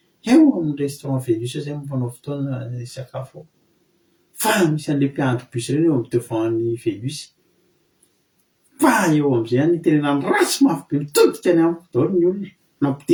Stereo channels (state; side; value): identical; both; correlation 1.00